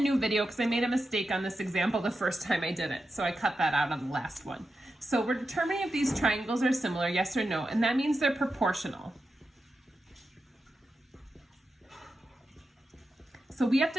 video because I made a mistake on this example the first time I did it, so I cut that out on the last one. So we're determining if these triangles are similar, yes or no, and that means they're proportional. So we have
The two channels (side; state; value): both; normal; correlation 0.89